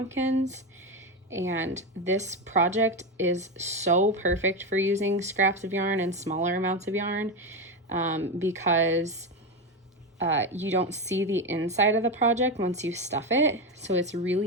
And this project is so perfect for using scraps of yarn and smaller amounts of yarn because you don't see the inside of the project once you stuff it. So it's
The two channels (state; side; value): normal; both; correlation 0.14